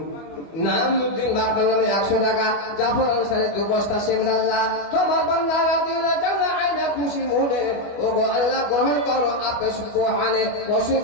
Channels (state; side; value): late; right; 25 ms